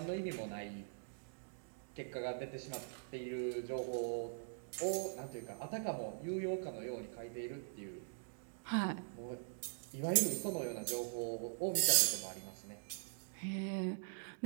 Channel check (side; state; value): left; silent; digital silence